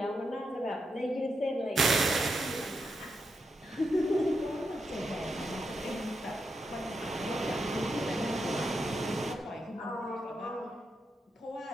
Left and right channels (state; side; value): normal; both; correlation 0.84